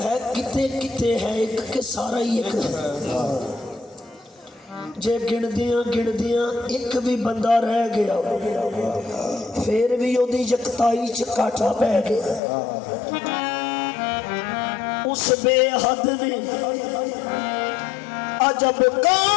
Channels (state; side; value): drops out; right; at 12.4 s